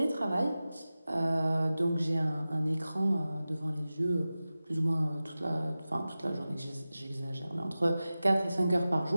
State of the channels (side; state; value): both; inverted; correlation -0.95